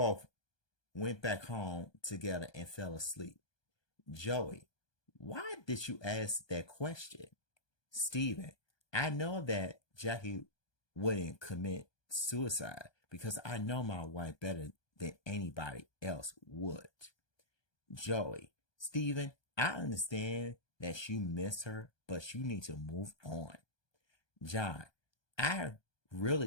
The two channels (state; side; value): late; right; 1.2 ms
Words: went back home together and fell asleep. Joey, why did you ask that question? Stephen, I know that Jackie wouldn't commit suicide because I know my wife better than anybody else would. Joey, Stephen, I understand that you miss her, but you need to move on. John, I